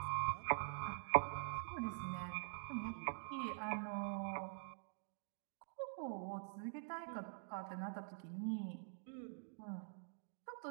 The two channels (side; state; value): left; silent; digital silence